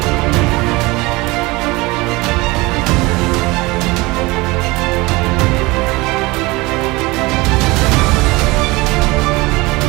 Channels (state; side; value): quieter; left; 22.6 dB